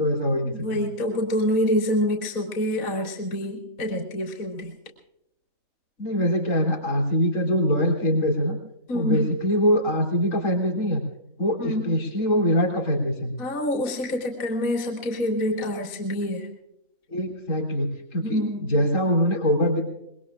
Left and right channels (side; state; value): right; late; 4.0 ms